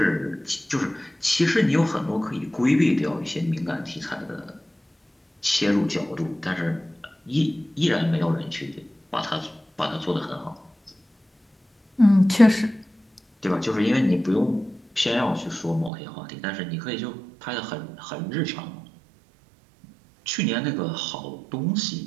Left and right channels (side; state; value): left; drops out; at 15.9 s